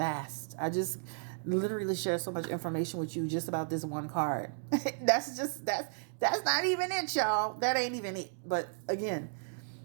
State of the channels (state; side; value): silent; left; digital silence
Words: I just literally share so much information with you just about this one card. that's not even it, y'all. That ain't even it. But again,